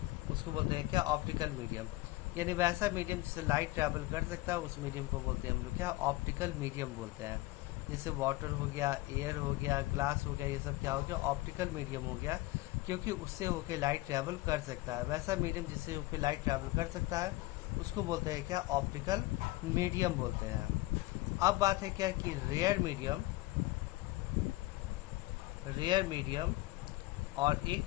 उसको बोलते हैं क्या, ऑप्टिकल मीडियम। यानी वैसा मीडियम जिससे लाइट ट्रेवल कर सकता है उस मीडियम को बोलते हैं हम लोग क्या, ऑप्टिकल मीडियम बोलते हैं। जैसे वाटर हो गया, एयर हो गया, ग्लास हो गया, ये सब क्या हो गया, ऑप्टिकल मीडियम हो गया, क्योंकि उससे होके लाइट ट्रेवल कर सकता है। वैसा मीडियम जिससे होके लाइट ट्रेवल कर सकता है उसको बोलते हैं क्या, ऑप्टिकल मीडियम बोलते हैं। अब बात है क्या कि रेयर मीडियम, रेयर मीडियम और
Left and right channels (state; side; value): quieter; right; 19.2 dB